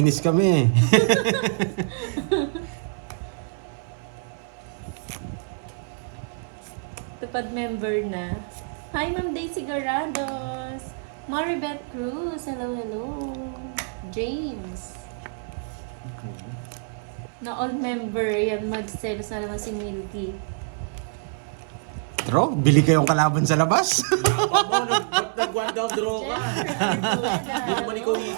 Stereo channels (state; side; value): silent; left; 57 dB below the other